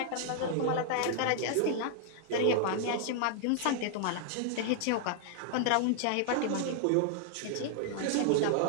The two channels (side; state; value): both; different; correlation -0.01